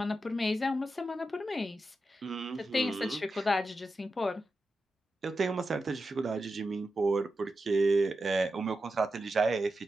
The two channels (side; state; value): both; normal; correlation 0.90